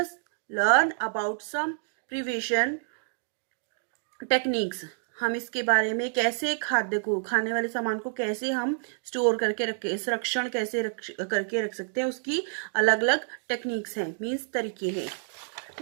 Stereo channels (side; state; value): left; silent; digital silence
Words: learn about some preservation techniques. हम इसके बारे में कैसे खाद्य को, खाने वाले सामान को कैसे हम स्टोर करके रखे, संरक्षण कैसे करके रख सकते हैं, उसकी अलग अलग टेक्निक्स हैं, मीन्स तरीके हैं.